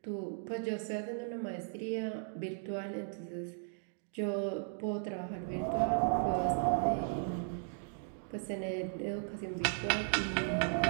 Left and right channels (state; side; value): silent; left; digital silence